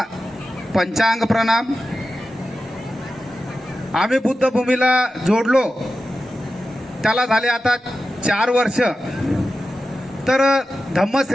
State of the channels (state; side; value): normal; both; correlation 0.92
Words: पंचांग प्रणाम. आम्ही बुद्धभूमीला जोडलो त्याला झाले आता 4 वर्ष. तर